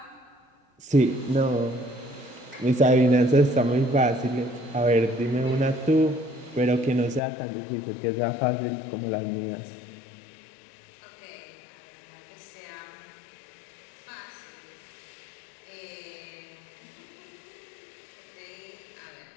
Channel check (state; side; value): drops out; right; at 7.2 s